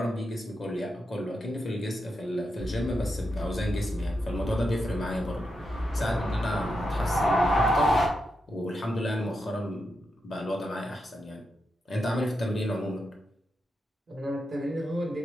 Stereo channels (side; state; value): both; normal; correlation 0.86